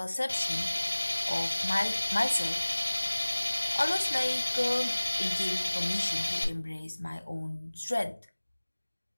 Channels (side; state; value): both; inverted; correlation -1.00